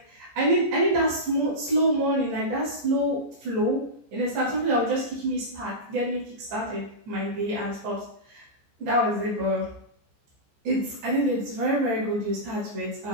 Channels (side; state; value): left; late; 14 ms